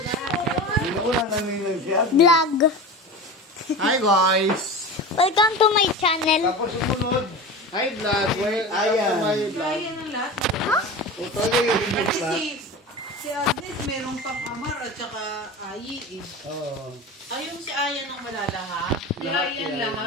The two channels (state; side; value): normal; both; correlation 0.30